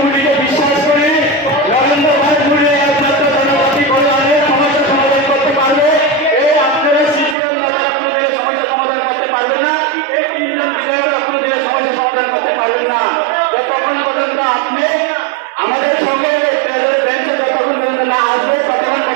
বিশ্বাস করি। নরেন্দ্র ভাই মোদী একমাত্র জনজাতি কল্যাণের সমস্যা সমাধান করতে পারবে। এই আপনারা সিপিএম আপনাদের সমস্যা সমাধান করতে পারবেন না, এই 3 জন বিধায়ক আপনাদের সমস্যা সমাধান করতে পারবেন না। যতক্ষণ পর্যন্ত আপনি আমাদের সঙ্গে বেঞ্চে যতক্ষণ পর্যন্ত না আসবে ততক্ষণ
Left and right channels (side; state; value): left; drops out; at 7.4 s